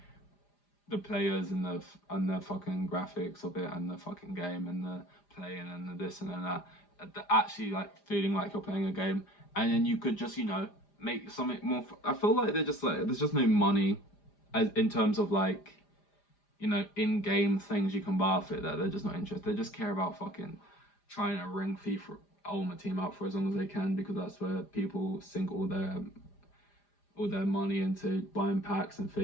the players and the fucking graphics of it and the fucking game and the playing and the this and that actually like feeling like you're playing a game. And then you could just make something more. I feel like there's just no money as in terms of like in-game things you can buy off it, that they're just not interested. They just care about fucking trying to ring FIFA Ultimate Team out for as long as they can because that's where people sink all their all their money into buying packs and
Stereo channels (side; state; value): right; late; 5.0 ms